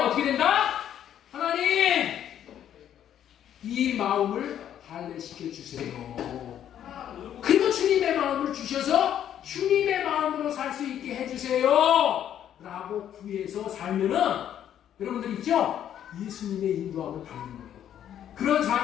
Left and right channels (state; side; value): quieter; right; 10.3 dB